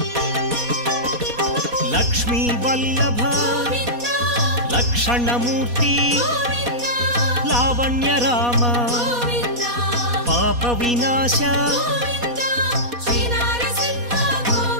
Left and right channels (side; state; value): left; late; 4.2 ms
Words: లక్ష్మీ వల్లభ లక్షణమూర్తి లావణ్య రామ పాప వినాశ